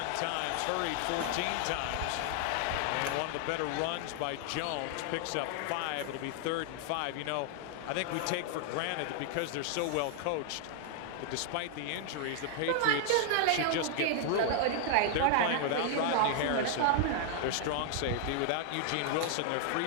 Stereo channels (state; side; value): different; both; correlation 0.00